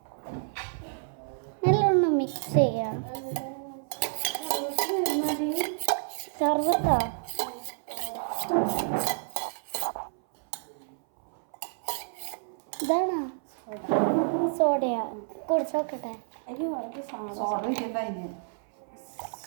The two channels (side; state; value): left; silent; 57 dB below the other